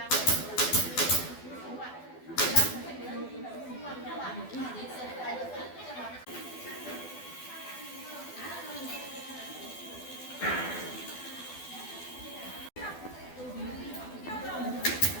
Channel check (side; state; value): right; late; 12 ms